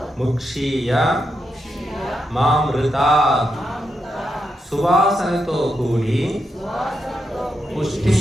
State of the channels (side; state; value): both; normal; correlation 0.84